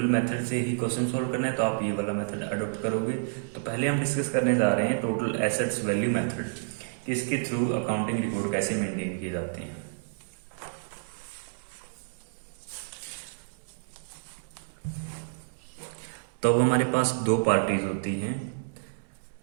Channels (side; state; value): left; silent; 58 dB below the other